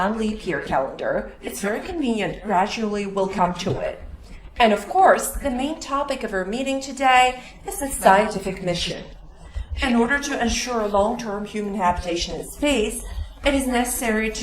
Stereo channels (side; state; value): both; identical; correlation 1.00